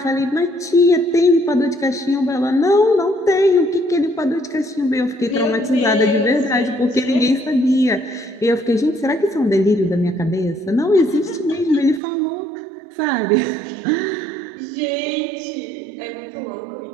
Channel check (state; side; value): drops out; left; at 12.0 s